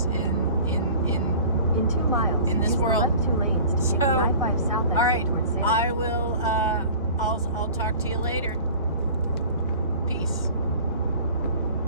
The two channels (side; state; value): both; inverted; correlation -0.43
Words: in 2 miles in this world. 2 lanes to I-5 south. All right, I will. I'll talk to you later. Peace.